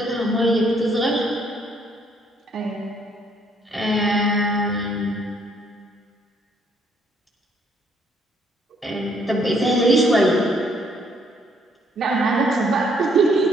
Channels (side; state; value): both; normal; correlation 0.67